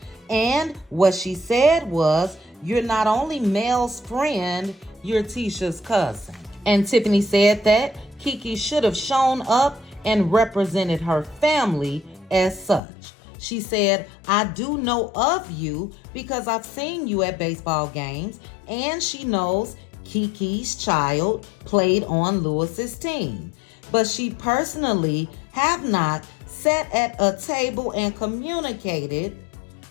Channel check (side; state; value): right; drops out; at 12.8 s